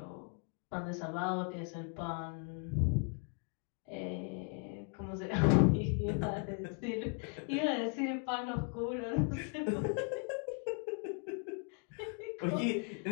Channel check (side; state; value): right; quieter; 39.0 dB